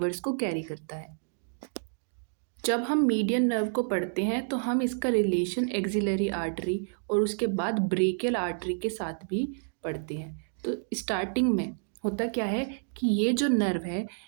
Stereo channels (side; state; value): left; silent; digital silence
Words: को कैरी करता है। जब हम मीडियन नर्व को पढ़ते हैं तो हम इसका रिलेशन एक्सिलरी आर्टरी और उसके बाद ब्रेकियल आर्टरी के साथ भी पढ़ते हैं। तो स्टार्टिंग में होता क्या है कि ये जो नर्व है